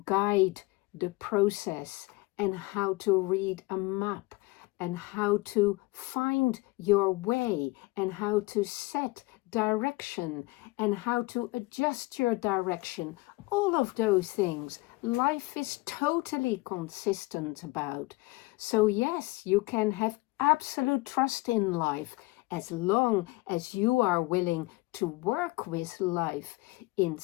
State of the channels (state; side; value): quieter; right; 22.6 dB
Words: guide the process, and how to read a map, and how to find your way, and how to set direction, and how to adjust your direction. All of those things life is totally consistent about. So yes, you can have absolute trust in life as long as you are willing to work with life